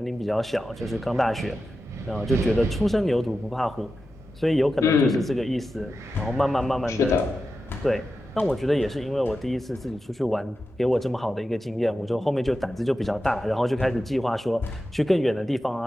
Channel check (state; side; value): normal; both; correlation 0.91